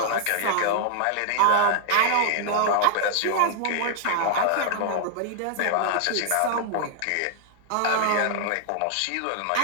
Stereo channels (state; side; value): different; both; correlation -0.01